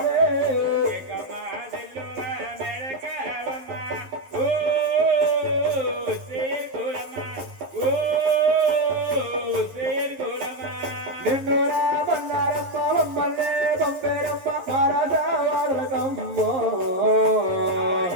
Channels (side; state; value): left; late; 11 ms